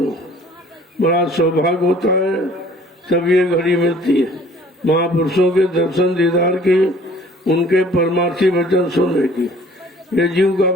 बड़ा सौभाग्य होता है तब ये घड़ी मिलती है महापुरुषों के दर्शन दीदार की, उनके परमार्थी वचन सुनने की। ये जीव का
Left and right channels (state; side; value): normal; both; correlation 0.54